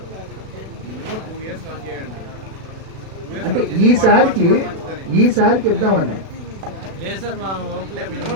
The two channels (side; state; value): left; late; 36 ms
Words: అంటే ఈసారికి ఇద్దామని